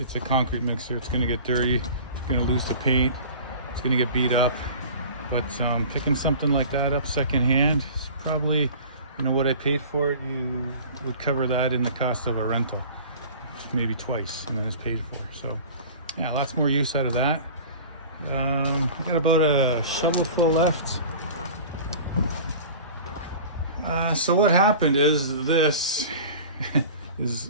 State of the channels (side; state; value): both; inverted; correlation -0.41